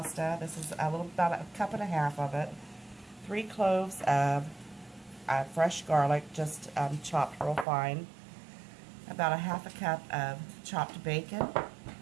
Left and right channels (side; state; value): left; drops out; at 7.7 s